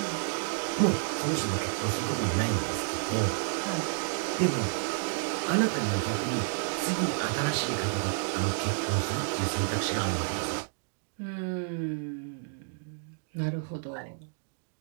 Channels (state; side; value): silent; left; digital silence